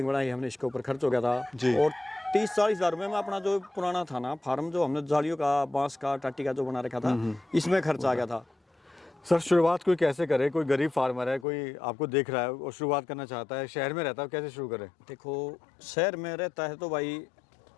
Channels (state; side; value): drops out; right; at 11.5 s